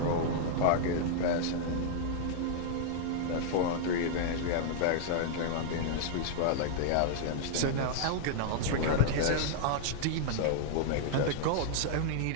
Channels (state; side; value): different; both; correlation -0.01